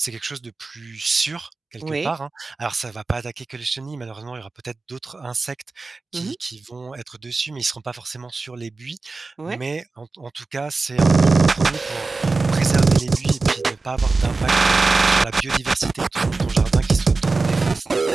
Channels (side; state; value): left; quieter; 3.8 dB